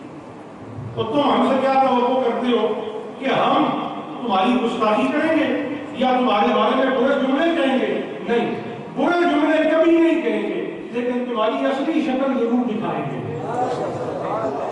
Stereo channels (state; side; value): identical; both; correlation 1.00